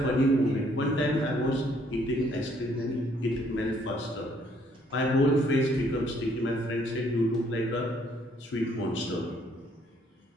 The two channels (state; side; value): normal; both; correlation 0.65